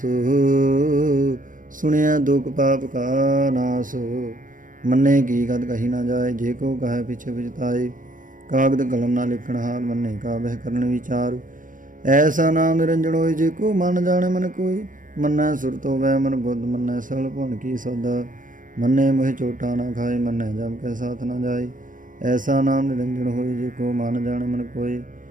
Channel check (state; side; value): late; left; 0.39 ms